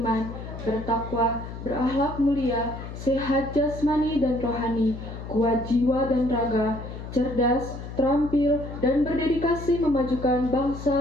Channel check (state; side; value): noise; left; hum, 10 dB below the sound